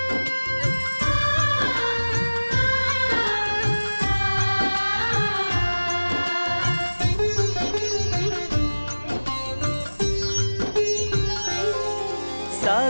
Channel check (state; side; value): inverted; both; correlation -1.00